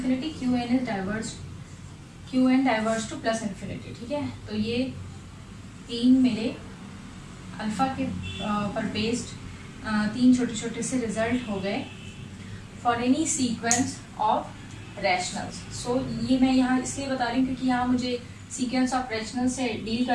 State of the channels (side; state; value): both; identical; correlation 1.00